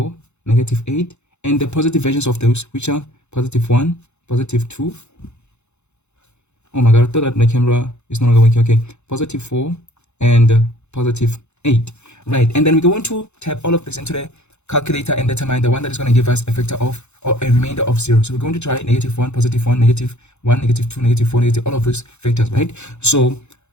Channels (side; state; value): right; late; 0.82 ms